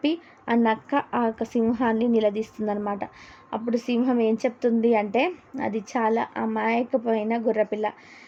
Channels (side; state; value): both; identical; correlation 1.00